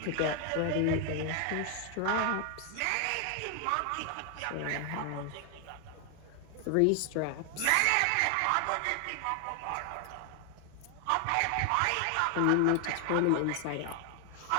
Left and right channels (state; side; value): different; both; correlation 0.00